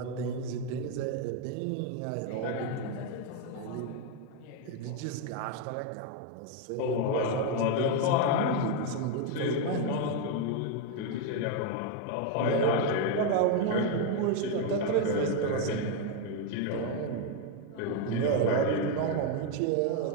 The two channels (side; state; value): both; different; correlation 0.01